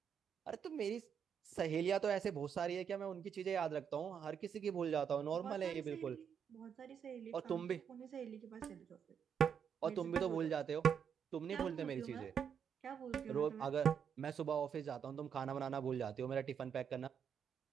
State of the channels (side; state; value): left; quieter; 7.6 dB